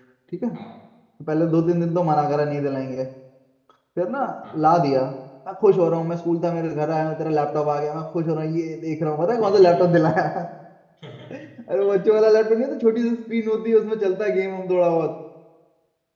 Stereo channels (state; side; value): identical; both; correlation 1.00